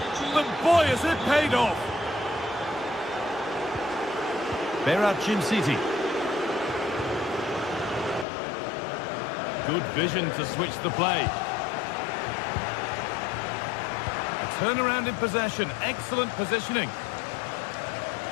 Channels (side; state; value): right; drops out; at 8.2 s